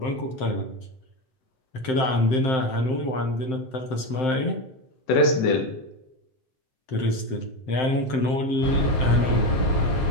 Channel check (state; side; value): late; right; 7.7 ms